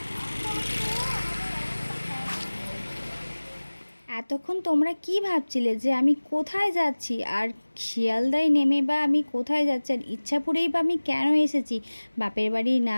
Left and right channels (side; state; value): both; inverted; correlation -1.00